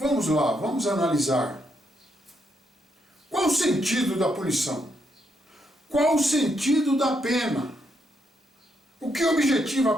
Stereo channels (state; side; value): normal; both; correlation 0.78